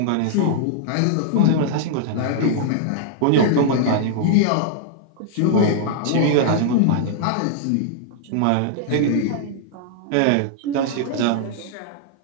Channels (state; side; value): different; both; correlation -0.01